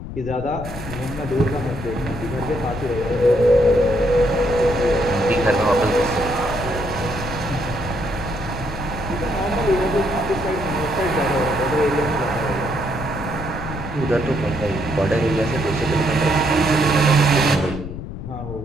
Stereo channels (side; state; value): left; noise; rumble, 9 dB below the sound